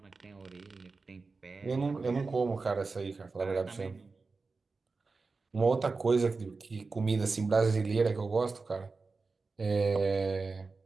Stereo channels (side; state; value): left; quieter; 4.1 dB